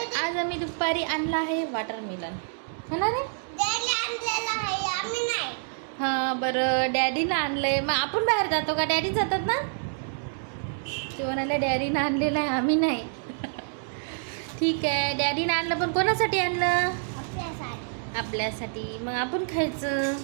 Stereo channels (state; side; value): silent; left; digital silence